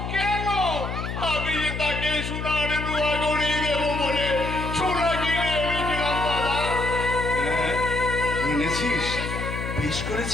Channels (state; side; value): noise; left; hum, 5 dB below the sound